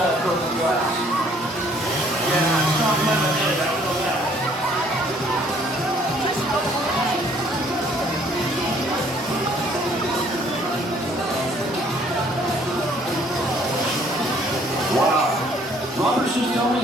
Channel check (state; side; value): normal; both; correlation 0.61